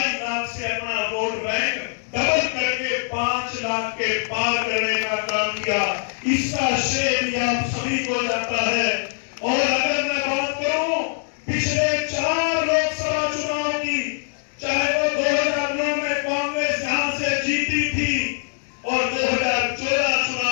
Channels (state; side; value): silent; right; 64 dB below the other